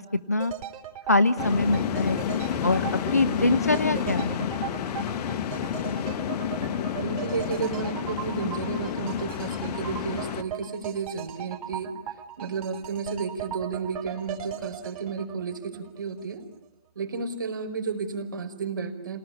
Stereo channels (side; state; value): both; inverted; correlation -0.51